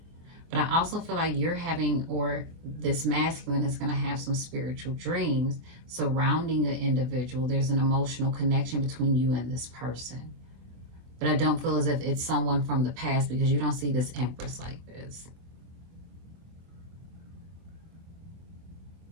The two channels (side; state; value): left; late; 24 ms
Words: But I also feel like you're having, or this masculine is going to have some spiritual dreams surrounding an individual. There's an emotional connection between you and this person. But I don't feel as if it's someone from the past, because you don't see this Empress like this.